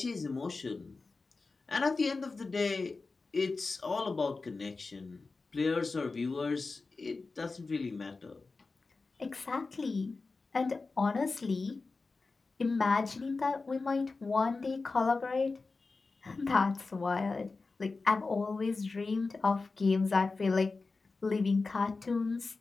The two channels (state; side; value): quieter; right; 3.9 dB